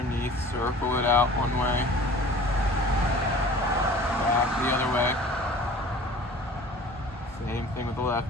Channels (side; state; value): both; normal; correlation 0.44